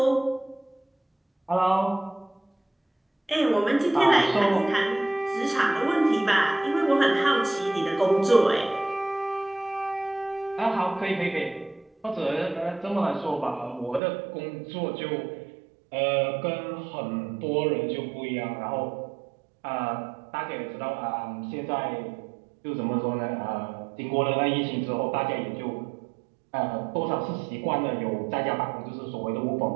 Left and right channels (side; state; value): left; drops out; at 14.0 s